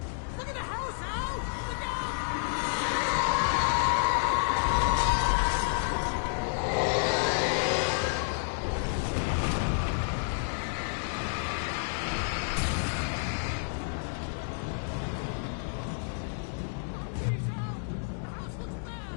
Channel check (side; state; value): right; silent; digital silence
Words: Look at the house, Al! Look out!